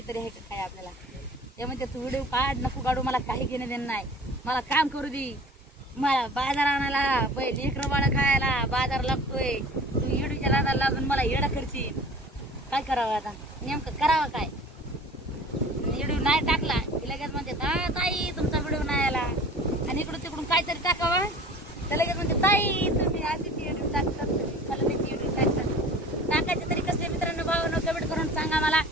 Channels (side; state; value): both; normal; correlation 0.43